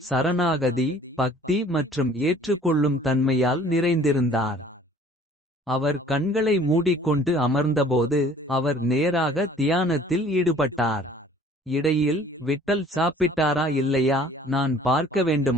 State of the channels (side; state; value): both; normal; correlation 0.52